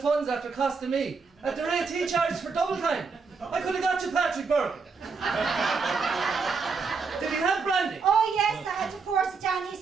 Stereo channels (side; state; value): left; quieter; 4.9 dB